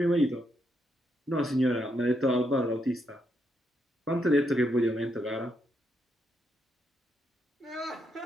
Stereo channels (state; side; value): normal; both; correlation 0.79